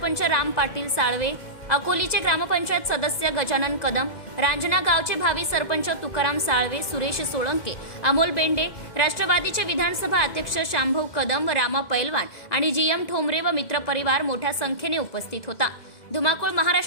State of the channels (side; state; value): right; late; 2.0 ms